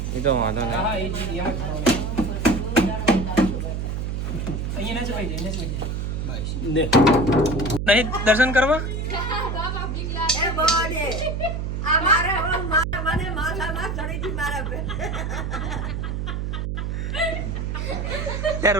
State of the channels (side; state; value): right; noise; hum, 2 dB below the sound